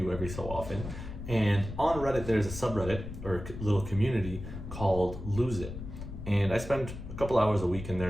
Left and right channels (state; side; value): noise; left; rumble, 9 dB below the sound